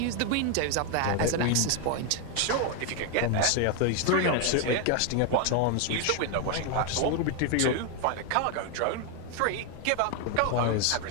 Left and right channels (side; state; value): both; different; correlation 0.01